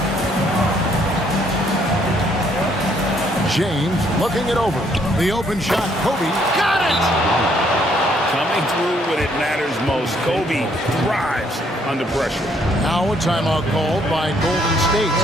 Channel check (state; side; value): normal; both; correlation 0.68